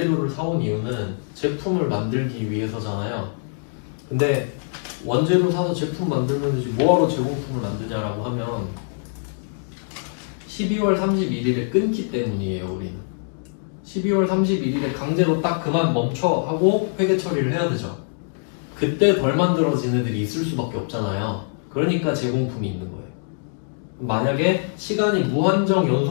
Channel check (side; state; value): right; silent; digital silence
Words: 사온 이유는 제품을 만들기 위해서잖아요. 근데 원재료 사서 제품 만들면 되지 뭐하러 제공품을 만드냐라고 하면 12월 31일에 끊기 때문이에요. 우리는 12월 31일에 강제로 딱 그만 멈춰 하고 회계 처리를 해야 되죠. 그때 덜 만들어진 애들이 있을 수밖에 없잖아요. 그러니까 제공품이 있는 거예요. 만약에 시간이 무한정